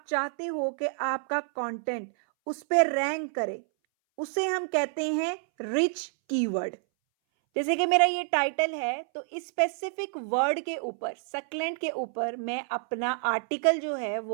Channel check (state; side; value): silent; left; 59 dB below the other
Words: चाहते हो कि आपका कंटेंट उस पे रैंक करे, उसे हम कहते हैं रिच कीवर्ड। जैसे कि मेरा ये टाइटल है, तो इस स्पेसिफिक वर्ड के ऊपर, सक्लेंट के ऊपर मैं अपना आर्टिकल जो है